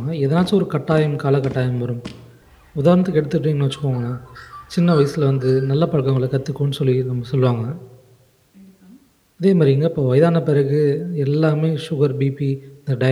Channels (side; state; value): both; identical; correlation 1.00